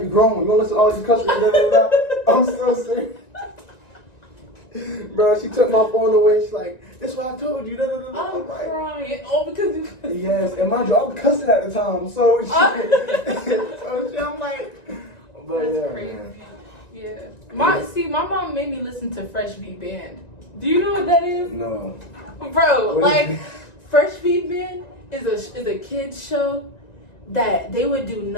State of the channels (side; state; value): right; late; 1.9 ms